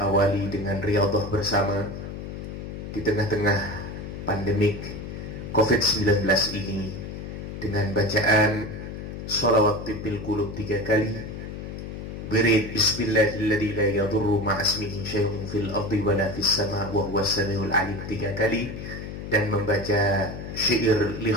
dengan riyadhah bersama di tengah-tengah pandemik COVID-19 ini dengan bacaan sholawat tibil qulub 3 kali, wirid bismillahilladzi la yadurru ma'asmihi syai'un fil ardi wala fis sama' wa huwas samiul alim 3 kali, dan membaca syair li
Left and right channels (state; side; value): noise; left; hum, 8 dB below the sound